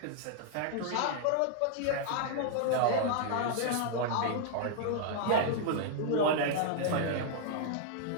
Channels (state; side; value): different; both; correlation -0.01